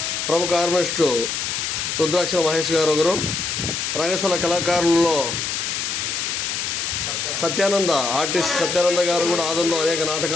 ప్రముఖ ఆర్టిస్టు రుద్రాక్షల మహేష్ గారు ఒకరు. రంగస్థల కళాకారులలో ఆర్టిస్ట్ సత్యానంద గారు కూడా ఆదంలో అనేక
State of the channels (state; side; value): noise; left; hiss, 2 dB below the sound